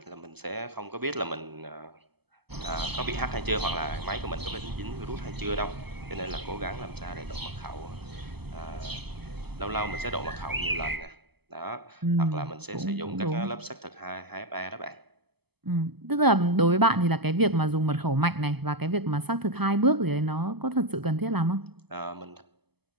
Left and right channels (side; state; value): left; late; 0.97 ms